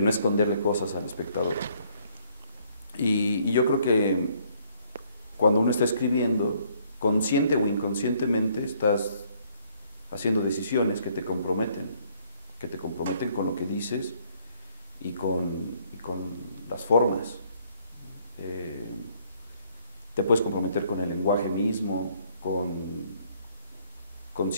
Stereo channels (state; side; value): inverted; both; correlation -0.65